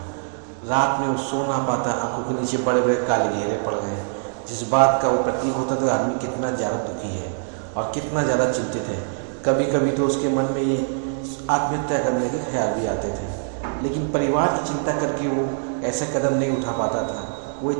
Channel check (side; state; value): left; silent; digital silence